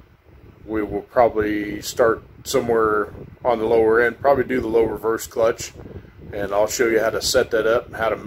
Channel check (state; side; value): identical; both; correlation 1.00